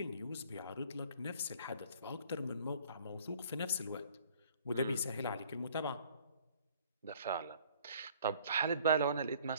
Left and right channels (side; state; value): both; inverted; correlation -0.56